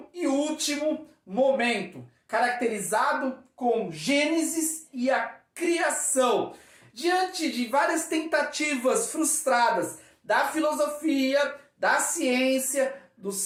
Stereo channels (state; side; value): identical; both; correlation 1.00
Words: e último momento, caracterizado com Gênesis e a criação. Diante de várias tentativas frustradas da filosofia, da ciência, do